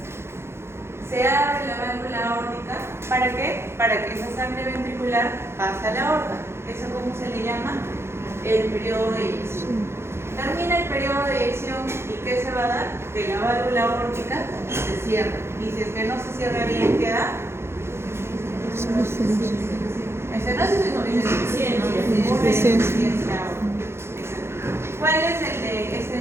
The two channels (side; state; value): left; late; 0.12 ms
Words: Se abre la válvula aórtica, ¿para qué? Para que esa sangre ventricular pase a la aorta. ¿Eso cómo se le llama? El periodo de eyección. Termina el periodo de eyección y ¿qué se va a dar? Que la válvula aórtica se cierra. Y si es que no se cierra bien, ¿qué da? Estenosis o insuficiencia aórtica. ¿Cuál es el de